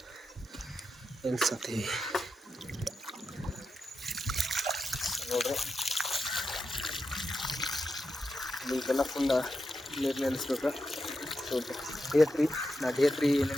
ನಿಲ್ಸತ್ತೀವಿ ನೋಡ್ರಿ. ಇದೆಲ್ಲ ಫುಲ್ ನೀರು ನಿಲ್ಲಿಸ್ಬೇಕು. ಸೊ ಡೇ 3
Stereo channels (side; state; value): both; normal; correlation 0.87